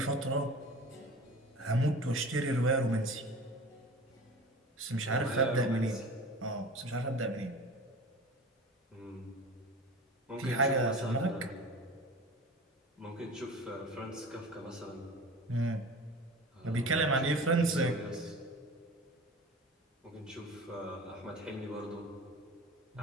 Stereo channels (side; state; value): both; normal; correlation 0.37